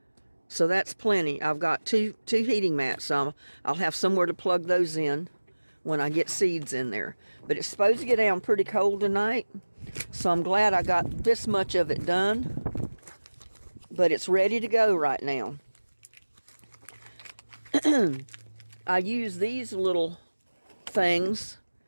So that's plenty. I've got two heating mats. I'll have somewhere to plug those in when I get seeds in there. But it's supposed to get down pretty cold tonight, so I'm glad I got this much of it done. But it's ready to go right now. I use these little things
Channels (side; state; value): both; inverted; correlation -1.00